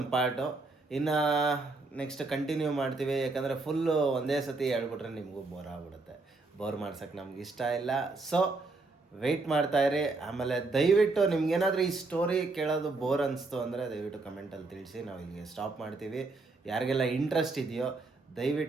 ಪಾರ್ಟು. ಇನ್ನು ನೆಕ್ಸ್ಟ್ ಕಂಟಿನ್ಯೂ ಮಾಡ್ತೀವಿ, ಯಾಕಂದರೆ ಫುಲ್ಲು ಒಂದೇ ಸತಿ ಹೇಳ್ಬಿಟ್ರೆ ನಿಮಗೂ ಬೋರ್ ಆಗ್ಬಿಡುತ್ತೆ. ಬೋರ್ ಮಾಡ್ಸೋಕ್ಕೆ ನಮ್ಗೆ ಇಷ್ಟ ಇಲ್ಲ. ಸೊ ವೆಯ್ಟ್ ಮಾಡ್ತಾಯಿರಿ. ಆಮೇಲೆ ದಯವಿಟ್ಟು ನಿಮ್ಗೇನಾದರೂ ಈ ಸ್ಟೋರಿ ಕೇಳೋದು ಬೋರ್ ಅನಿಸ್ತು ಅಂದರೆ ದಯವಿಟ್ಟು ಕಮೆಂಟಲ್ಲಿ ತಿಳಿಸಿ. ನಾವು ಇಲ್ಲಿಗೆ ಸ್ಟಾಪ್ ಮಾಡ್ತೀವಿ. ಯಾರಿಗೆಲ್ಲ ಇಂಟ್ರೆಸ್ಟ್ ಇದೆಯೋ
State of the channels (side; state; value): left; quieter; 3.5 dB